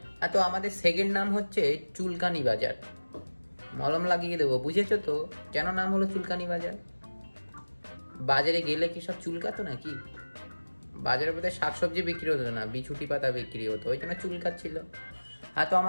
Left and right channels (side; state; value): both; inverted; correlation -1.00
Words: আর তো আমাদের সেকেন্ড নাম হচ্ছে চুলকানি বাজার। মলম লাগিয়ে দেবো, বুঝেছো তো কেন নাম হলো চুলকানি বাজার? বাজারে গেলে কি সব চুলকাতো নাকি? বাজারে বোধহয় শাকসবজি বিক্রি হতো না, বিছুটি পাতা বিক্রি হতো, ওই জন্য চুলকাচ্ছিল। আর তো